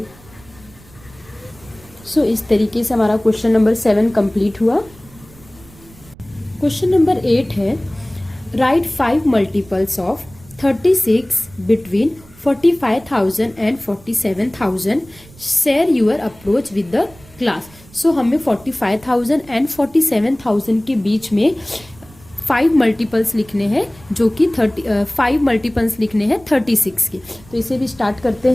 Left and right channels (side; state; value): right; noise; rumble, 24 dB below the sound